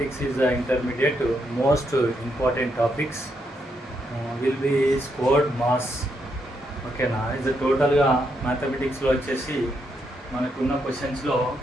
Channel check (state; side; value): normal; both; correlation 0.79